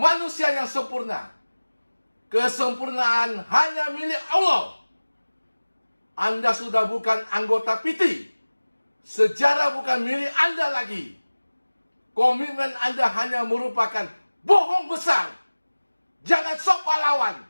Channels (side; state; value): both; inverted; correlation -1.00